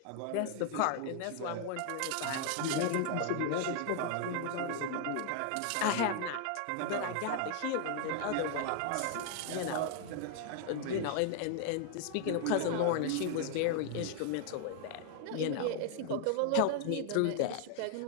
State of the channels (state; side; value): different; both; correlation 0.00